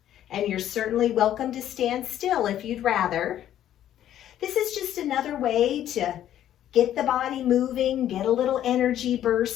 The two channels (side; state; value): right; quieter; 11.5 dB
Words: and you're certainly welcome to stand still if you'd rather. This is just another way to get the body moving, get a little energy